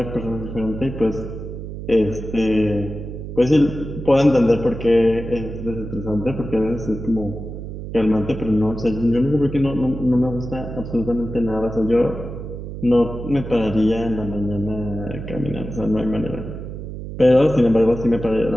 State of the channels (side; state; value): right; noise; hum, 9 dB below the sound